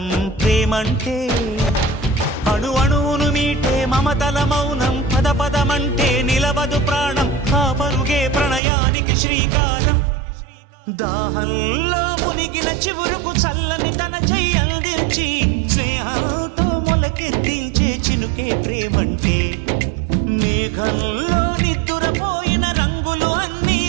ప్రేమంటే అణు అణువును మీటే మమతల మౌనం పద పదమంటే నిలవదు ప్రాణం ఆ పరుగే ప్రణయానికి శ్రీకారం దాహంలో మునిగిన చివురుకు చల్లని తన చెయ్యి అందించి స్నేహంతో మొలకెత్తించే చినుకే ప్రేమంటే మేఘంలో నిద్దురపోయిన రంగులు అన్నీ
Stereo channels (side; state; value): left; drops out; at 8.6 s